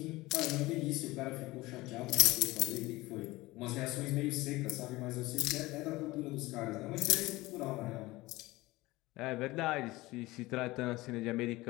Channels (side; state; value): right; quieter; 19.9 dB